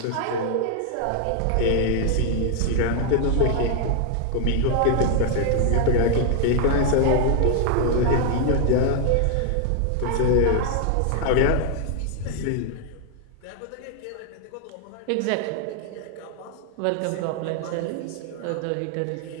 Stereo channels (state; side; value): different; both; correlation 0.00